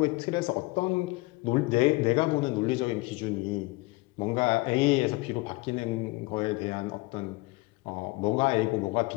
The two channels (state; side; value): quieter; right; 23.2 dB